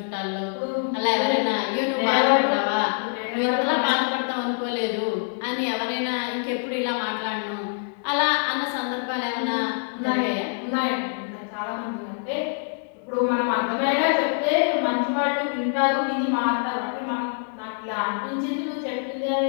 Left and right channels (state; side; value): silent; right; 61 dB below the other